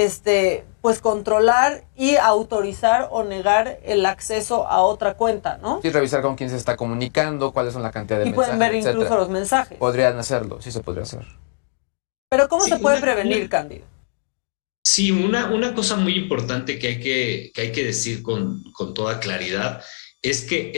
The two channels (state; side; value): silent; right; digital silence